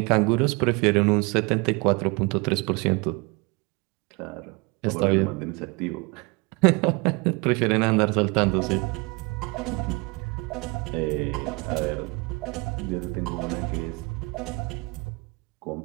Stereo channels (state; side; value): quieter; left; 27.8 dB